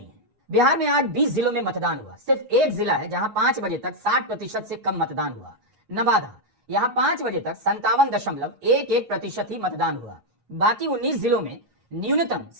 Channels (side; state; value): left; late; 8.4 ms